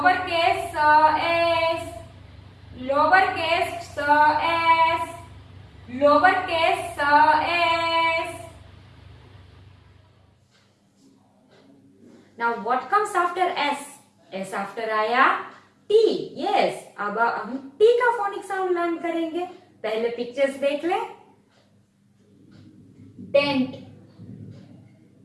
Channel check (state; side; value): identical; both; correlation 1.00